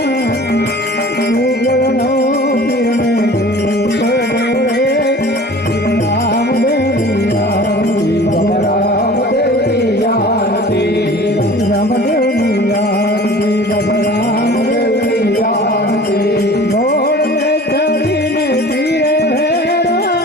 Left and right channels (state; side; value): normal; both; correlation 0.43